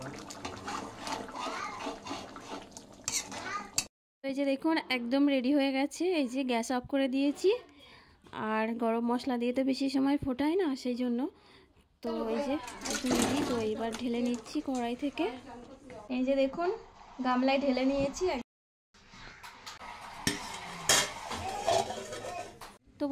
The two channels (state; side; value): identical; both; correlation 1.00